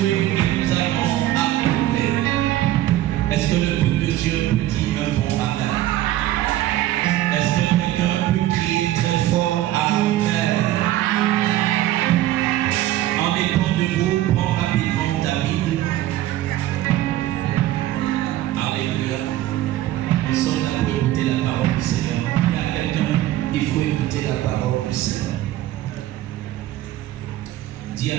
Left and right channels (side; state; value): left; quieter; 14.2 dB